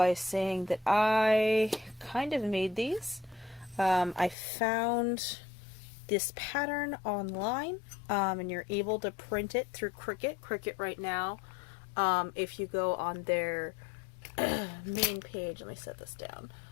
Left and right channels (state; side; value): drops out; right; at 4.4 s